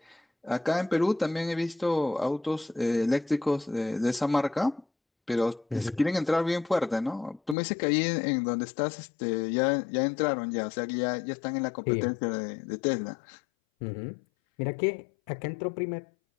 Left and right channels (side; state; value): right; drops out; at 7.6 s